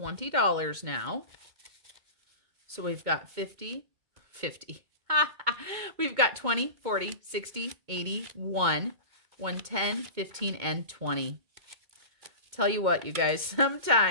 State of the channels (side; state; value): left; late; 2.1 ms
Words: now. So we've got 50, 50. We've got 20, 40, 60, 80, 110, 15, and 20. Tell you what, you guys,